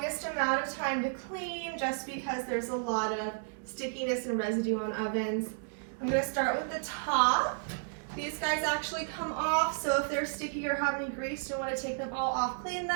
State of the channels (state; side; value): silent; left; digital silence